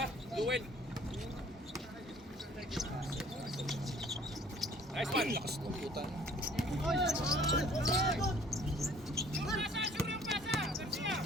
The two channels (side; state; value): both; normal; correlation 0.55